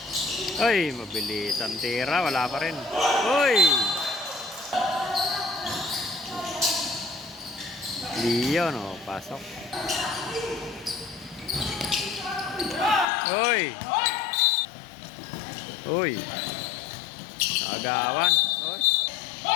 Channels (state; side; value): drops out; right; at 13.1 s